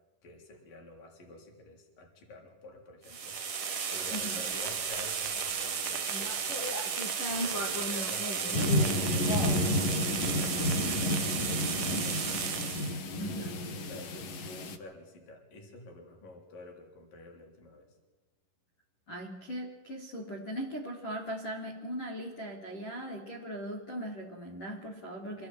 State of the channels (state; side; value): late; right; 11 ms